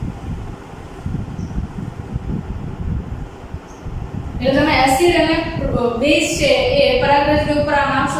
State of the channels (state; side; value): identical; both; correlation 1.00